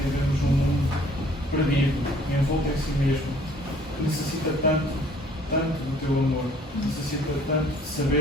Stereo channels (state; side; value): normal; both; correlation 0.57